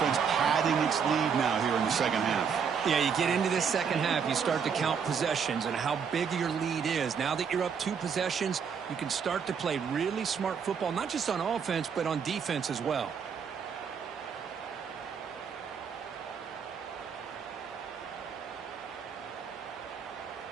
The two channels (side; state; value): left; quieter; 6.7 dB